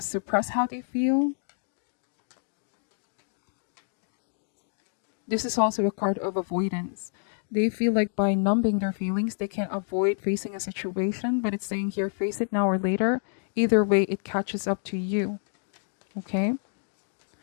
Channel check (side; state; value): right; silent; digital silence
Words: how they feel. This is also a card of avoidance. They feel like by numbing their feelings, they can avoid facing a situation, but it's saying here, face it now or later. Either way, it catches up to you. Okay?